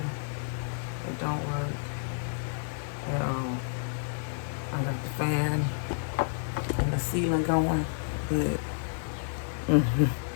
It don't work at all. I got the fan and the ceiling going, but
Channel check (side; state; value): right; silent; digital silence